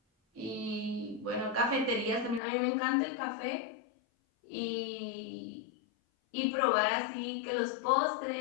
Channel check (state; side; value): drops out; right; at 2.4 s